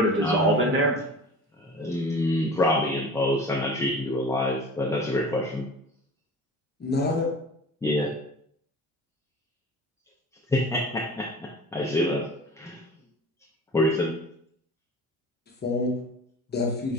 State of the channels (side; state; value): both; normal; correlation 0.39